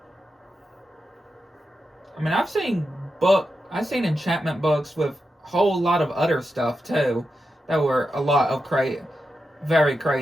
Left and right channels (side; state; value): both; normal; correlation 0.89